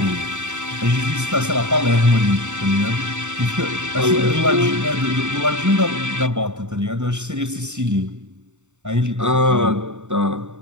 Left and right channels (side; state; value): left; late; 0.84 ms